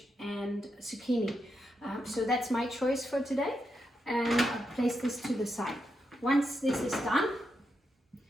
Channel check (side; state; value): both; normal; correlation 0.84